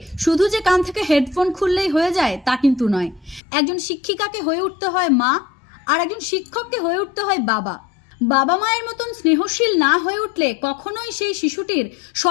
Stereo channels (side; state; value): right; drops out; at 3.4 s